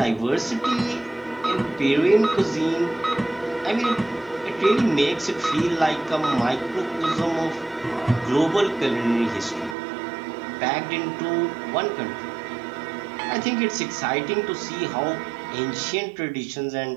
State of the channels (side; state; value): left; drops out; at 9.8 s